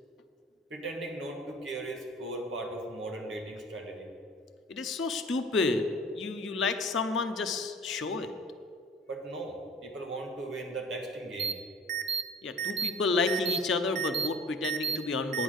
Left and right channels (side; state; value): both; normal; correlation 0.45